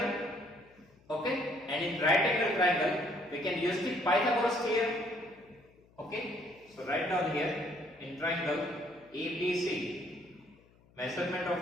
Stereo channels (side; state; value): left; noise; hum, 29 dB below the sound